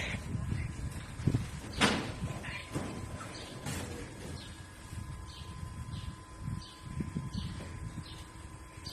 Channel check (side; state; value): both; identical; correlation 1.00